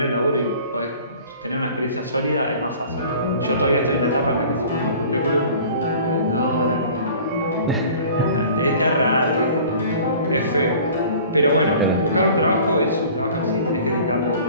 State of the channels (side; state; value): both; inverted; correlation -0.46